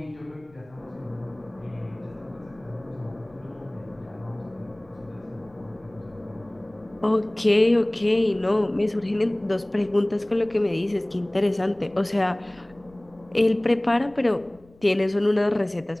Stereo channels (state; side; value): noise; left; rumble, 28 dB below the sound